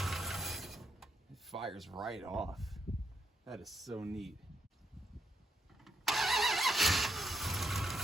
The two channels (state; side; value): normal; both; correlation 0.77